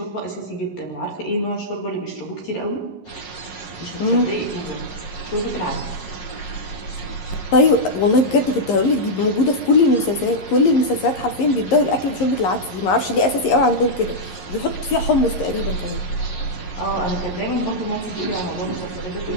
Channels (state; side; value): late; right; 11 ms